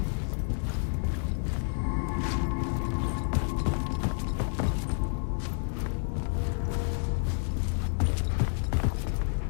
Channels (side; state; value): right; silent; 58 dB below the other